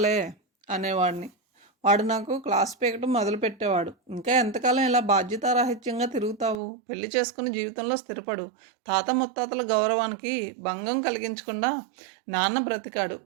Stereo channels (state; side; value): drops out; left; at 6.6 s